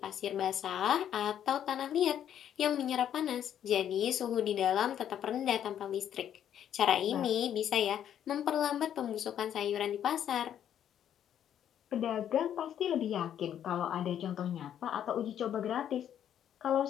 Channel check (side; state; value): right; quieter; 9.9 dB